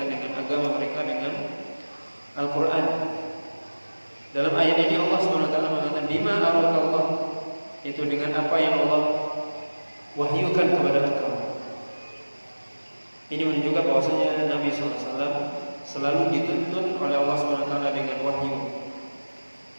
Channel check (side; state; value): both; inverted; correlation -1.00